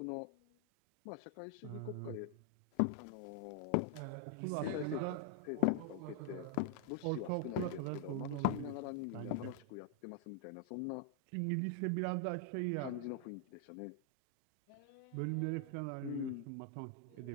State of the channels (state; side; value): different; both; correlation 0.00